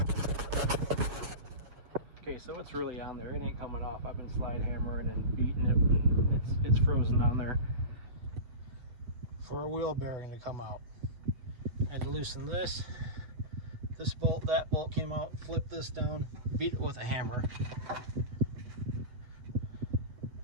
Okay, so it's really on there. It ain't coming off. I've been slide hammering and beating it. It's frozen on there. For a wheel bearing to come out, I had to loosen this bolt, that bolt came out, flip this down, beat it with a hammer.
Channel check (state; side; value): late; left; 8.1 ms